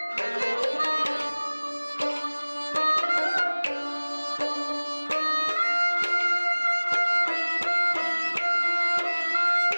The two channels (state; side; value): inverted; both; correlation -1.00